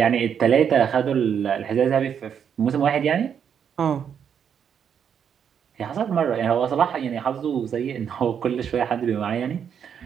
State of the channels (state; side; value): quieter; left; 7.9 dB